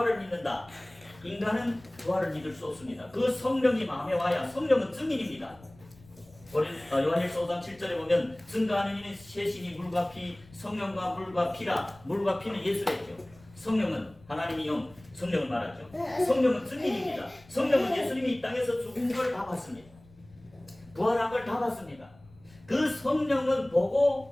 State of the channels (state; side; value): noise; left; rumble, 25 dB below the sound